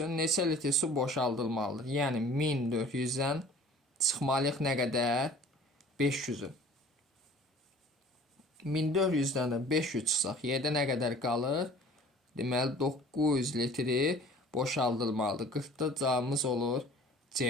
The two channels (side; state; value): both; normal; correlation 0.47